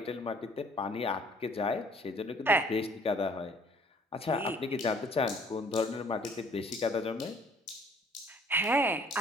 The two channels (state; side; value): normal; both; correlation 0.56